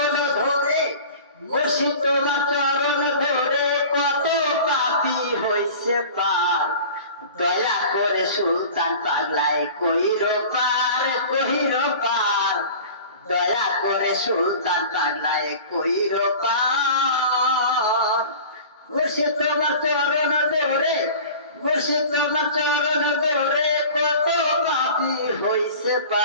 ধরে, মুর্শিদ তোমার চরণ ধরে কত পাপী হইছে পার। দয়া করে সুলতান পাগলায় কইরো পার, কইরো পার। দয়া করে সুলতান পাগলায় কইরো পার। মুর্শিদ তোমার চরণ ধরে, মুর্শিদ তোমার চরণ ধরে কত পাপী হইছে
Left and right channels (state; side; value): inverted; both; correlation -0.40